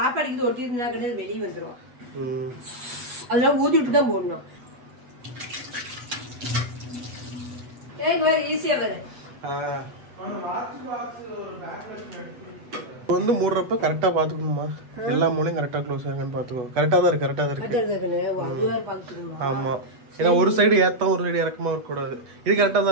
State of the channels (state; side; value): late; left; 8.2 ms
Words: ஒட்டி இருந்தா கிடையாது, வெளியே வந்துடும். அதெல்லாம் ஊதி விட்டு தான் போடணும். ஈஸியா வரும். வந்து மூடுறப்ப கரெக்டா பாத்துக்கணுமா? எல்லா மூலையும் கரெக்டா க்ளோஸ் ஆகுன்னு பாத்துக்கோ. கரெக்டா தான் இருக்கு, கரெக்டா தான் இருக்கு. ஆமா, ஏன்னா ஒரு சைடு ஏத்தம் ஒரு சைடு இறக்கமா இருக்க கூடாது. இது கரெக்டா